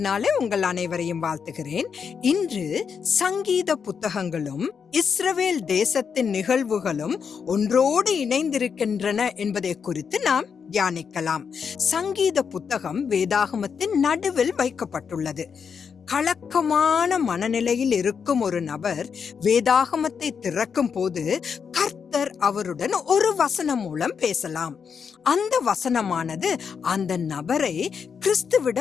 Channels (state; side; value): quieter; right; 6.5 dB